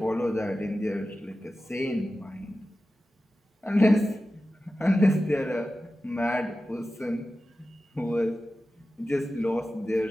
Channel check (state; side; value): normal; both; correlation 0.94